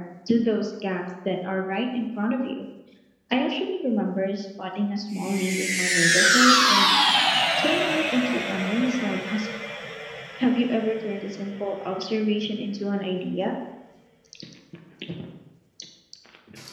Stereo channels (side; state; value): both; identical; correlation 1.00